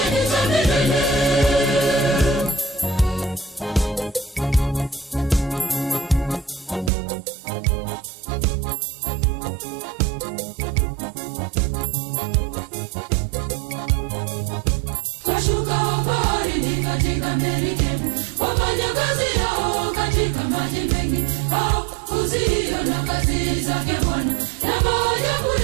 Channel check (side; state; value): left; drops out; at 6.9 s